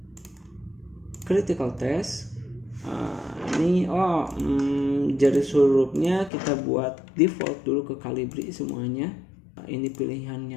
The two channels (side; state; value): right; drops out; at 6.3 s